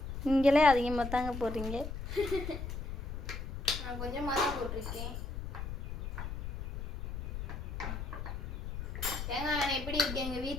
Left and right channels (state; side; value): noise; left; rumble, 6 dB below the sound